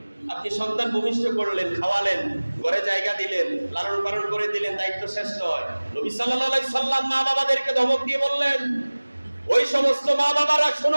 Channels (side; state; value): both; inverted; correlation -1.00